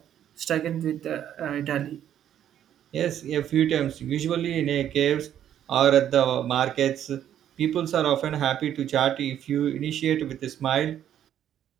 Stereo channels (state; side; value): quieter; left; 10.5 dB